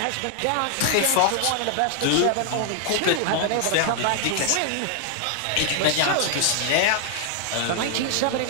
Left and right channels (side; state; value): both; different; correlation 0.00